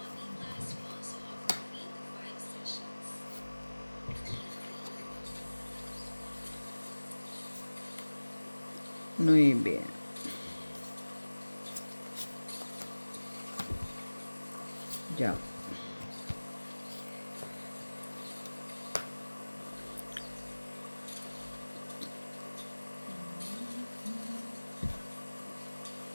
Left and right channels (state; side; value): inverted; both; correlation -1.00